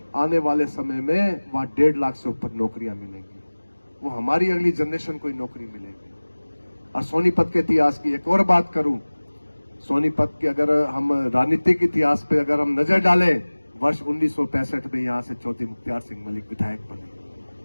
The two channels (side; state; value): both; inverted; correlation -1.00